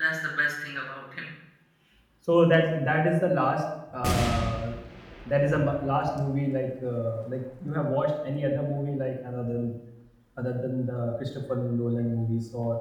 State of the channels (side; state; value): both; identical; correlation 1.00